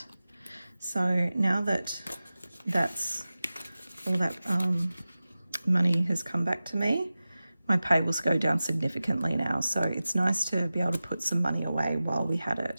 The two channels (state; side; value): inverted; both; correlation -0.96